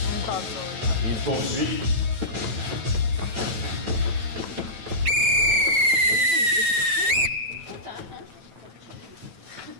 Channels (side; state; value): left; late; 9.1 ms